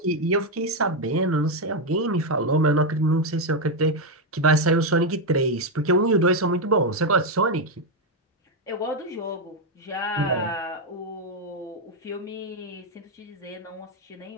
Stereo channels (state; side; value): normal; both; correlation 0.04